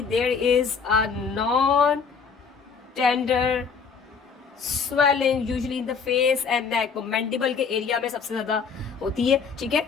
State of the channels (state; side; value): quieter; right; 5.7 dB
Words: there is a non-tender swelling usually in the face and neck. वो mandible के एरिया में सबसे ज्यादा होती है, ठीक है।